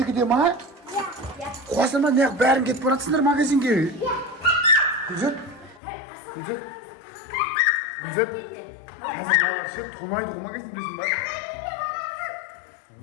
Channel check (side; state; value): right; drops out; at 5.8 s